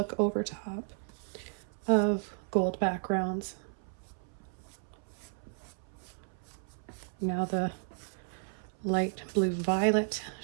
over top of gold backgrounds. Now the light blue violet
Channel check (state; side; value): silent; left; 55 dB below the other